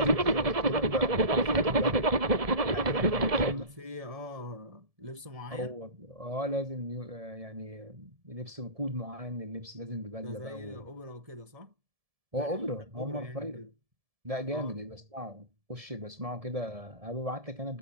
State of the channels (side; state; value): left; late; 1.7 ms